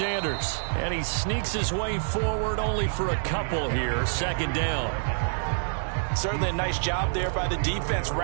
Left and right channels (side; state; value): left; silent; 57 dB below the other